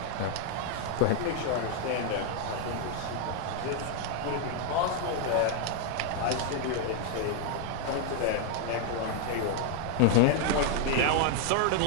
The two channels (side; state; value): both; different; correlation 0.00